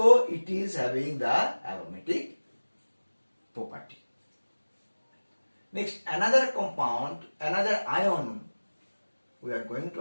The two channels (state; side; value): inverted; both; correlation -1.00